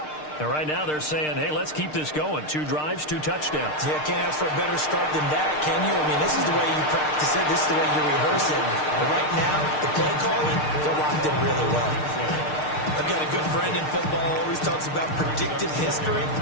And right now they're saying, hey, let's keep this going. 2 drives, 2 touchdowns. Yeah, can't ask for a better start than that, can you? I mean, this is the way you practice it. This is the way you rehearse it. But right now, the play calling, they're locked in really well. I've got a good friend in football who always talks about predictive history.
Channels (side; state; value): right; late; 6.6 ms